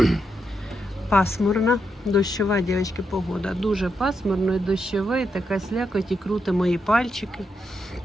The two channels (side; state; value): both; normal; correlation 0.82